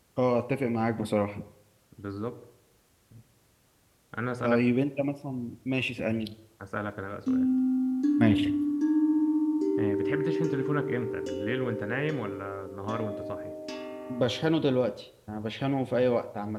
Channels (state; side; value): identical; both; correlation 1.00